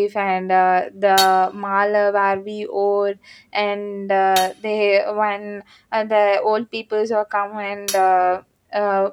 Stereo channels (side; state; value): both; identical; correlation 1.00